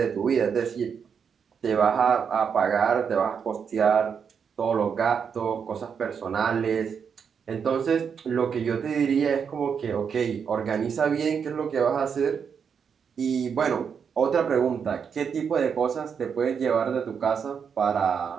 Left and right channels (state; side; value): quieter; left; 6.8 dB